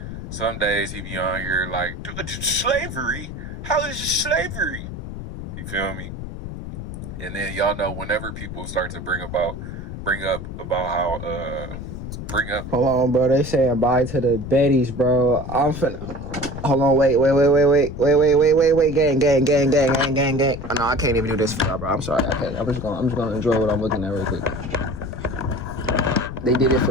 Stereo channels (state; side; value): noise; left; rumble, 9 dB below the sound